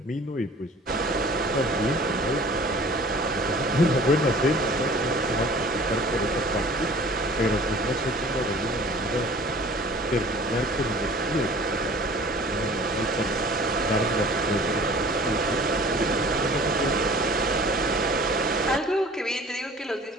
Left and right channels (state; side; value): normal; both; correlation 0.47